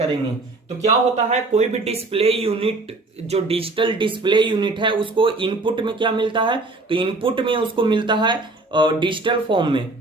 तो क्या होता है, कोई भी डिस्प्ले यूनिट जो डिजिटल डिस्प्ले यूनिट है उसको इनपुट में क्या मिलता है, तो इनपुट में उसको मिलता है डिजिटल फॉर्म में।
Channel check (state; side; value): quieter; left; 3.2 dB